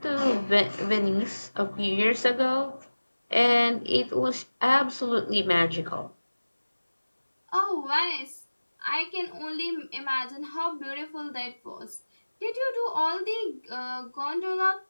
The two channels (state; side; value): inverted; both; correlation -1.00